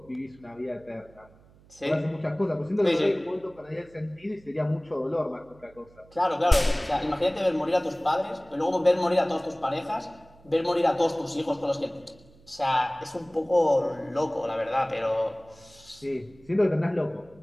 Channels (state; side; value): noise; right; hum, 27 dB below the sound